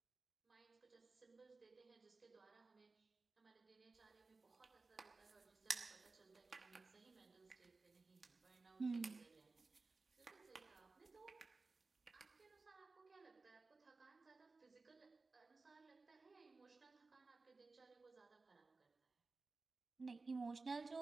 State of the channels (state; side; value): quieter; left; 3.8 dB